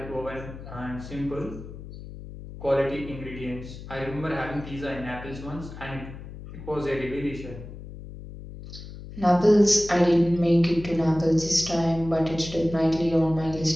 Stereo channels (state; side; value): noise; left; hum, 13 dB below the sound